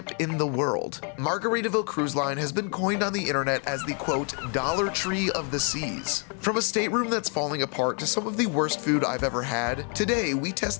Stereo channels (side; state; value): right; quieter; 38.7 dB